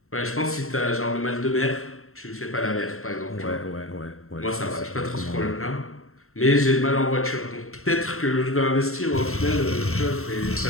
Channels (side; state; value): right; late; 0.62 ms